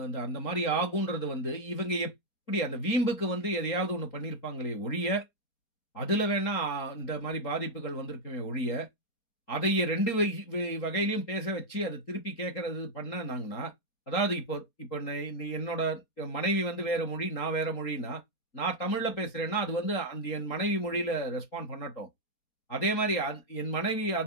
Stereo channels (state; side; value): late; right; 4.3 ms